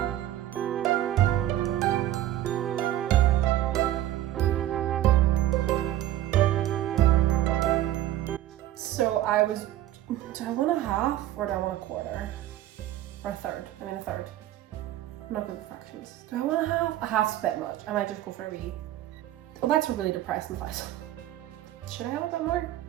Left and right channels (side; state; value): left; quieter; 13.3 dB